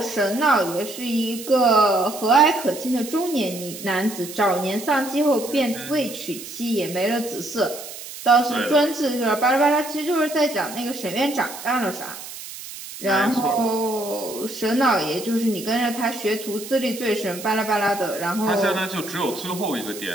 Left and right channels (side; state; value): right; noise; hiss, 12 dB below the sound